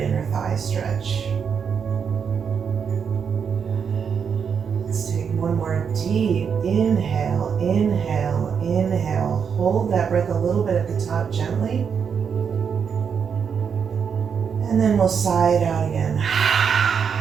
thigh stretch. One more deep inhale, inhale, inhale. Hold that breath a little bit at the top gently. And then we'll sigh it out again.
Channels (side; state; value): left; quieter; 6.8 dB